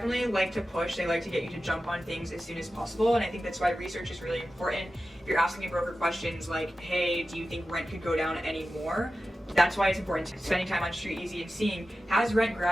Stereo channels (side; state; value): both; normal; correlation 0.93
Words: like to push. They like to get you to jump on things as soon as possible. And I think that's why research is really important. If you're asking a broker questions like, hey, do you think rent could go down any more? That's why it's important spending time on Street Easy and seeing, has rent